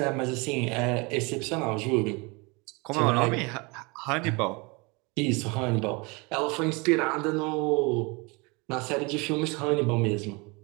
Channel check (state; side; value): quieter; left; 28.0 dB